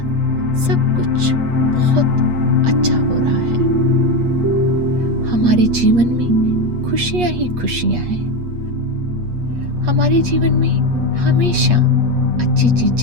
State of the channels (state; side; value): late; left; 8.4 ms